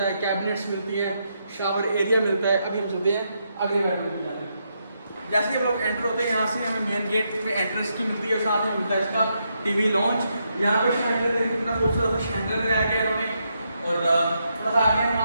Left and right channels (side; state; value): both; inverted; correlation -0.80